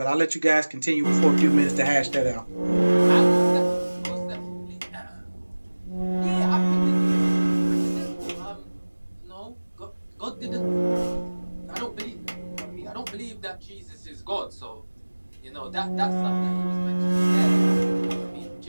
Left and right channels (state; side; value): inverted; both; correlation -1.00